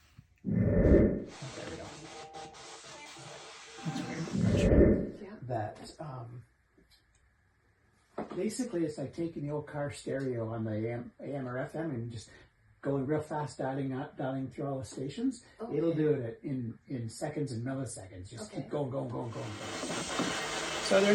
Oh, there we go. That's weird. Yeah. That, basically it's like taking the old car stereo on the AM or FM and just going real fast, dialing through all the stations. Okay. It'll do it in seconds and milliseconds. Just Okay. keep going. So are there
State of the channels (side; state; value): both; identical; correlation 1.00